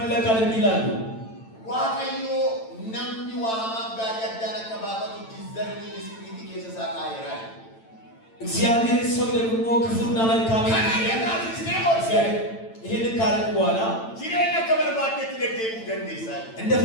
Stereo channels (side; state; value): right; late; 8.9 ms